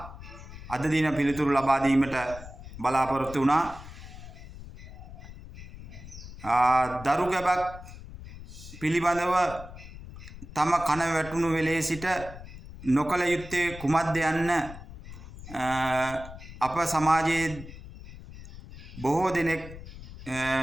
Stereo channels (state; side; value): noise; left; rumble, 14 dB below the sound